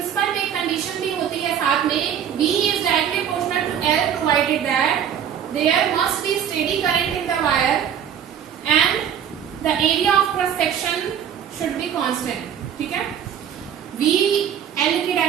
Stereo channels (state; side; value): quieter; left; 8.9 dB